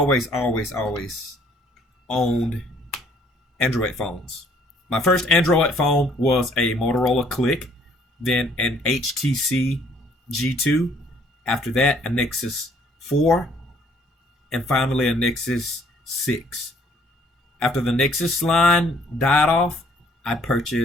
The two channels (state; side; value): normal; both; correlation 0.62